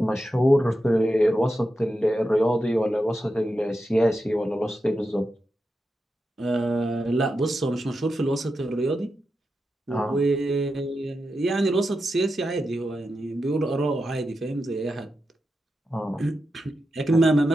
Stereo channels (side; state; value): both; normal; correlation 0.89